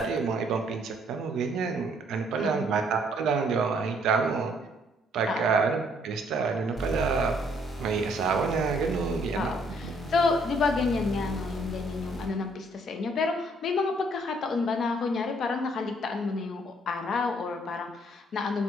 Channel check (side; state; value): both; normal; correlation 0.65